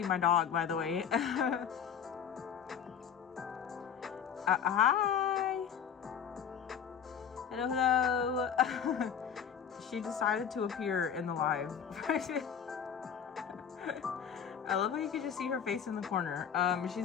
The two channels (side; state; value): right; quieter; 7.9 dB